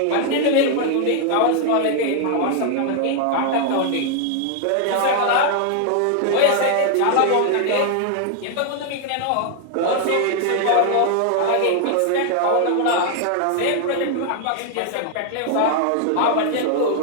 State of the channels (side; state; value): both; different; correlation 0.00